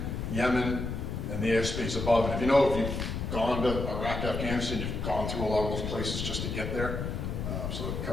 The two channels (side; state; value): left; noise; rumble, 3 dB below the sound